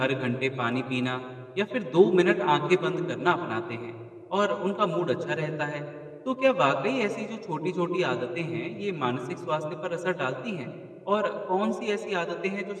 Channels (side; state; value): both; identical; correlation 1.00